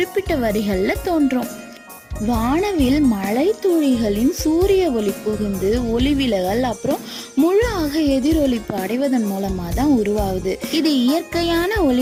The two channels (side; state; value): both; identical; correlation 1.00